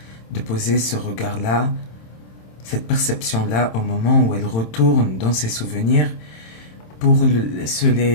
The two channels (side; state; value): right; late; 27 ms